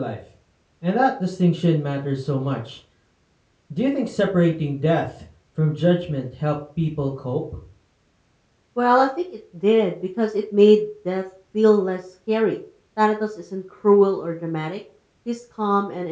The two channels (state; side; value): identical; both; correlation 1.00